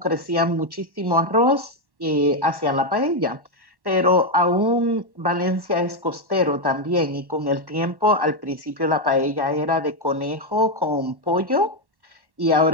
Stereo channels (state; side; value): late; left; 1.1 ms